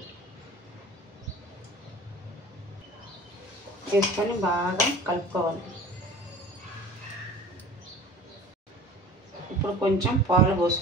వేసుకొని బాగా కలుపుకోవాలి. ఇప్పుడు కొంచెం పాలు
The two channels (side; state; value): both; normal; correlation 0.43